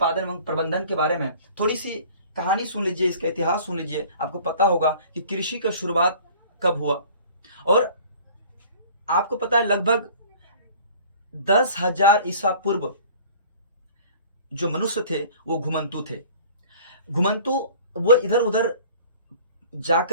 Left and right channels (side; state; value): both; inverted; correlation -0.48